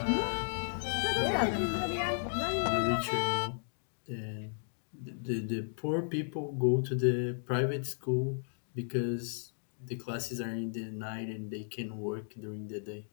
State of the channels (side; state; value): right; silent; digital silence